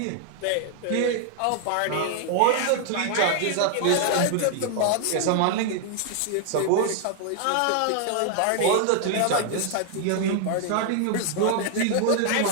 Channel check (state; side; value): different; both; correlation 0.00